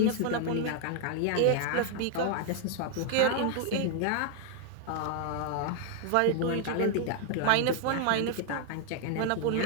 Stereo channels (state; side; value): different; both; correlation 0.00